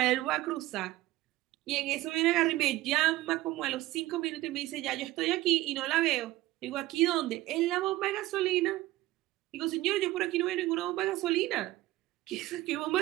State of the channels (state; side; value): quieter; left; 17.4 dB